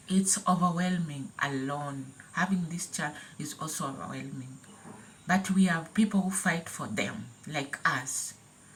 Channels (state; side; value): identical; both; correlation 1.00